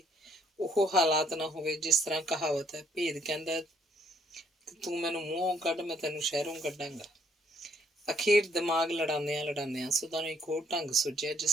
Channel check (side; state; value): both; normal; correlation 0.68